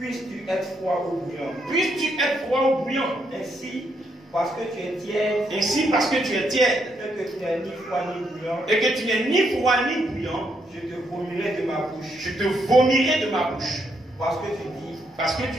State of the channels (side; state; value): both; normal; correlation 0.76